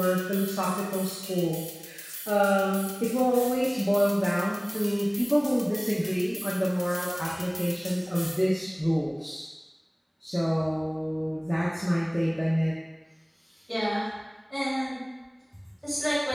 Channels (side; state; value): both; identical; correlation 1.00